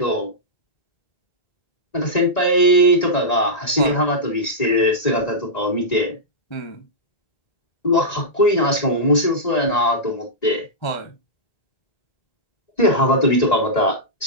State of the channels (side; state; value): right; late; 1.9 ms